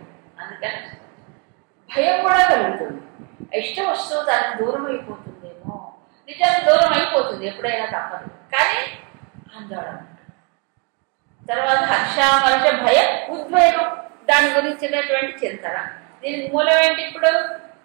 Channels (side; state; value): left; quieter; 33.4 dB